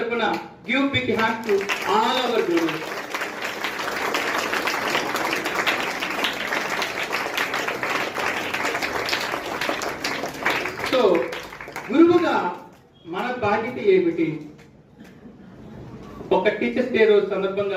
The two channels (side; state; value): both; identical; correlation 1.00